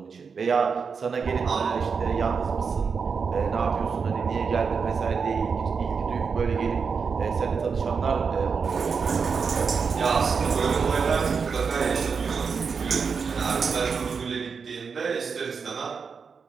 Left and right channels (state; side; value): quieter; left; 5.6 dB